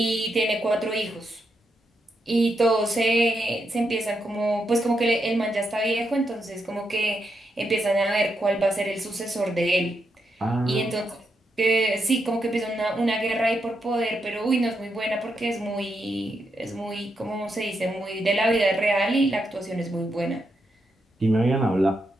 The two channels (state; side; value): normal; both; correlation 0.83